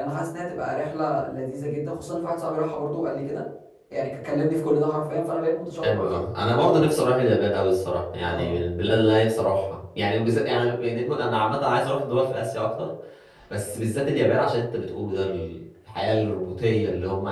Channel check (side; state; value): both; identical; correlation 1.00